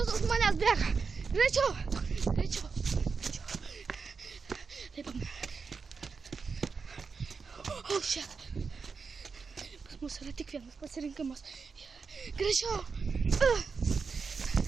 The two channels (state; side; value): quieter; left; 5.1 dB